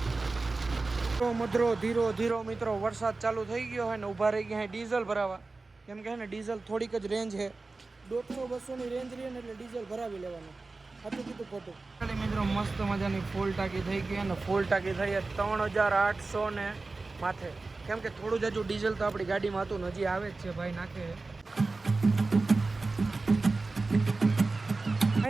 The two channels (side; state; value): left; quieter; 3.6 dB